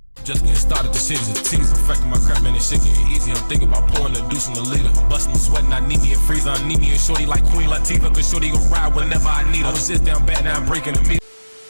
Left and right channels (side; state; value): both; inverted; correlation -1.00